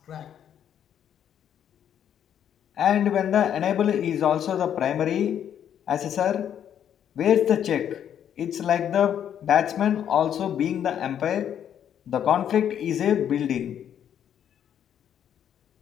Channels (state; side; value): quieter; right; 9.5 dB